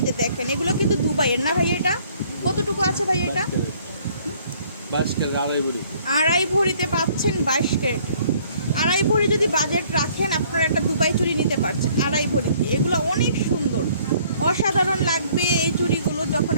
যে দেখেন এগুলো কিন্তু দুবাইয়ের না ভাই? এটা কতটুকু আছে ভাই? এটা 22 ক্যারেট আড়াই ভরিতে পাচ্ছেন, 22 ক্যারেট। আড়াই ভরি যদি বাজেট রাখেন আপনারা একটা দুবাই চুড়ি নিতে পারছেন আড়াই ভরি। এগুলো অনেক সুন্দর, অসাধারণ লাগবে এই চুড়িগুলো যখন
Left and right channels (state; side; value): inverted; both; correlation -0.59